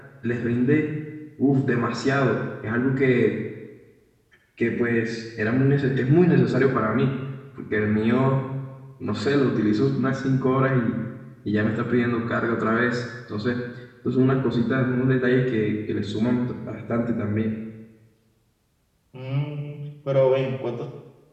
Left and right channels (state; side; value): identical; both; correlation 1.00